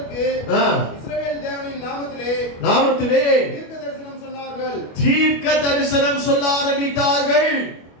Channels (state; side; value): late; right; 25 ms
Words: இஸ்ரவேல் தேவனின் நாமத்திலே தீர்க்க தரிசனம் சொல்ல ஆரம்பித்தார்கள்.